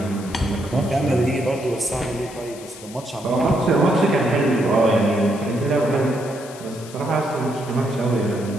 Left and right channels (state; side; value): noise; left; hiss, 18 dB below the sound